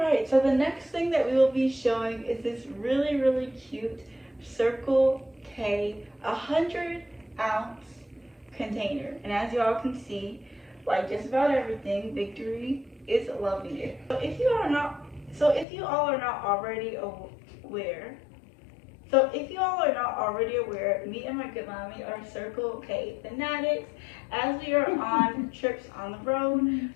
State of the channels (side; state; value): right; drops out; at 15.7 s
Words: so the next thing that we will be showing is this really, really cute Circle K 100-ounce container. And as you all can see, like just about everything, Victory is loving it. So if you all are not already aware, me and my good mommy are Circle K fanatics. As we are on trips on the road,